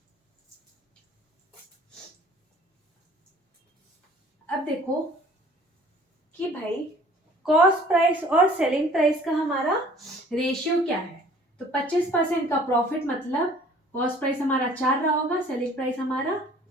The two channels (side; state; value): both; normal; correlation 0.52